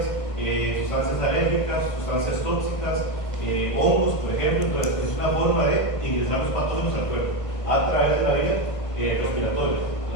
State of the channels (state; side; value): late; right; 1.5 ms